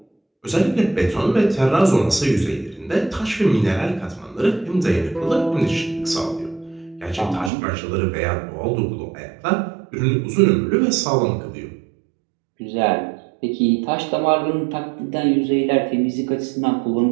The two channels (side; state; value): left; drops out; at 7.5 s